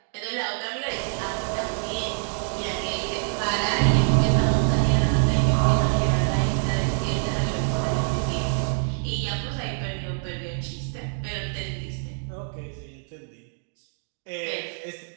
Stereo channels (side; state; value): left; silent; digital silence